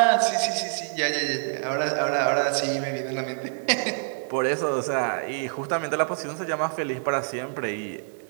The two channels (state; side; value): silent; left; digital silence